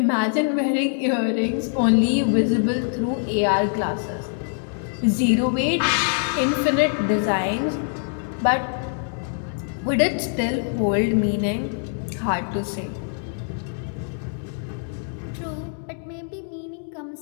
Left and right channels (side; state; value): right; silent; 63 dB below the other